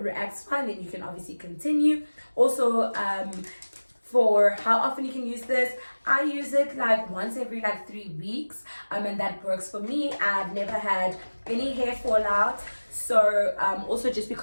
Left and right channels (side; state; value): both; inverted; correlation -1.00